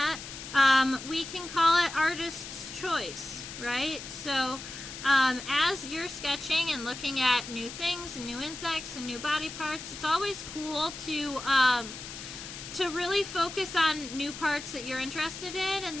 we can call it artist's choice, right? So as you're sketching and looking at new things and new insects and new body parts, it's always cool to really focus on new parts that you're interested in, and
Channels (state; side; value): noise; left; hiss, 11 dB below the sound